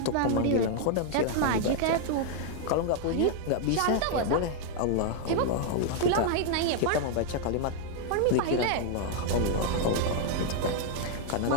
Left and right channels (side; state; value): both; different; correlation 0.00